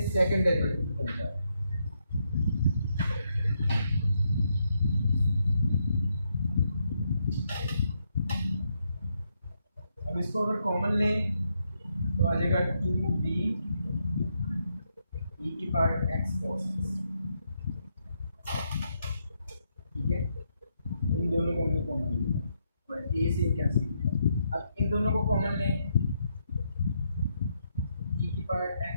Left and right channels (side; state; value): both; inverted; correlation -0.78